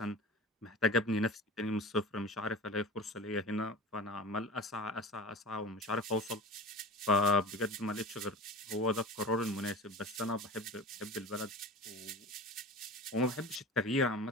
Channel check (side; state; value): both; normal; correlation 0.35